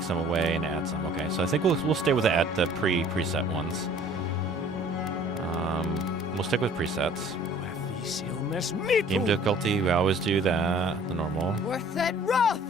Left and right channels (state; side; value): normal; both; correlation 0.52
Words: some away and add some. Okay, so I think we'll stay with the preset ones. We'll stick with presets. Game difficulty, we always do that. The normal.